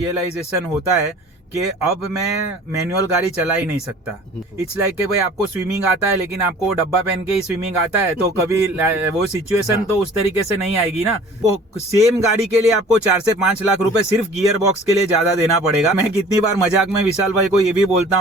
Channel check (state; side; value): normal; both; correlation 0.48